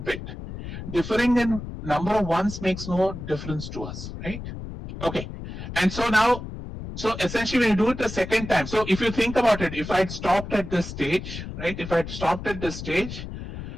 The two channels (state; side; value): noise; left; rumble, 9 dB below the sound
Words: bit. Differing in number of ones makes no difference to us, right? Okay, and so now, so essentially when you do it the second time, so if you think about it, if I'd stopped at this stage, right, if I'd stopped at this stage,